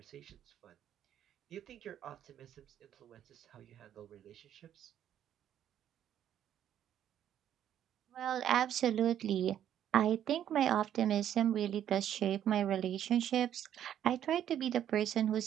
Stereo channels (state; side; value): quieter; left; 10.5 dB